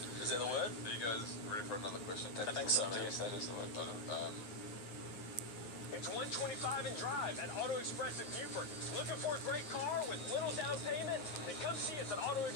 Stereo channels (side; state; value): right; late; 9.7 ms